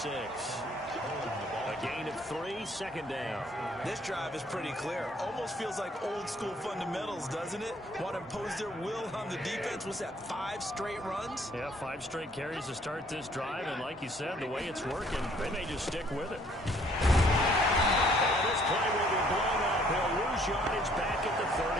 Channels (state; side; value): normal; both; correlation 0.62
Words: A gain of 3, 2nd down. This drive is pretty clear. Almost feels like old school fundamentals, doesn't it? Want to impose their will on the defense. What's that, 5 straight runs? Yeah, 5 straight carries to start this drive. And like you said, the way it's working, they may just stick with it. This play will be blown up. He'll lose yardage back at the